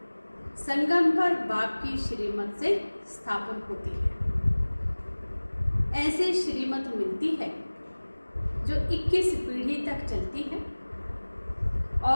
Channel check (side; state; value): both; inverted; correlation -1.00